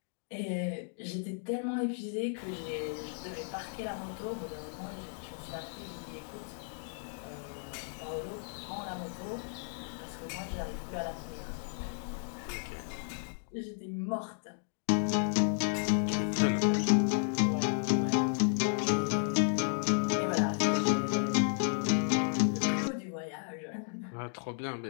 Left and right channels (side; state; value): right; silent; 55 dB below the other